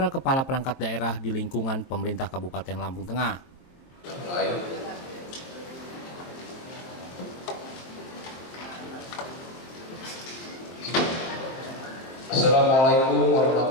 kepala perangkat daerah di lingkungan pemerintah Kabupaten Lampung Tengah. Assalamualaikum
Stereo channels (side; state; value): right; late; 23 ms